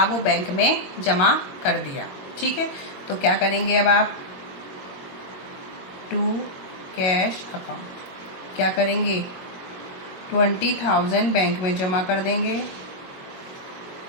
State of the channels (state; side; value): late; right; 22 ms